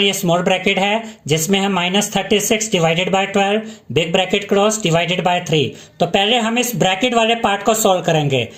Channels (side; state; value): both; identical; correlation 1.00